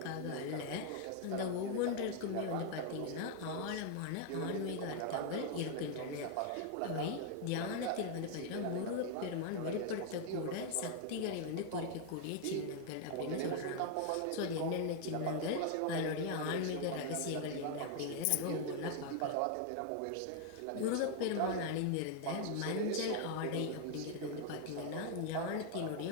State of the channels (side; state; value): both; different; correlation 0.00